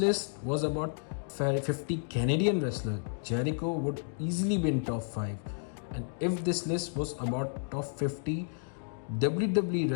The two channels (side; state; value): right; silent; digital silence